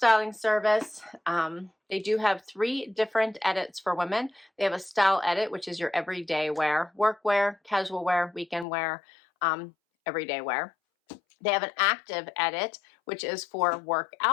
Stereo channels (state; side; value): drops out; right; at 8.7 s